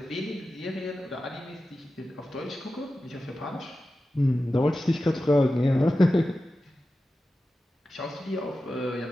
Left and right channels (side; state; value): both; normal; correlation 0.93